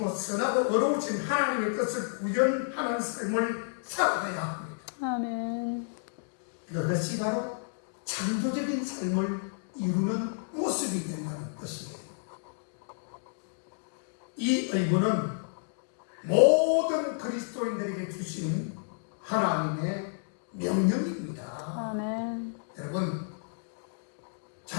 선하고 어려우신 하나님의 뜻을 구현하는 삶을 살아가야 합니다. 아멘. 그것이 바로 창조적인 삶을 이루는 모습이 된다는 것이에요. 이 의무는 모든 그리스도인들에게 주신 하나님의 명령입니다. 아멘. 여러분,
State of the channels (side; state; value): right; silent; digital silence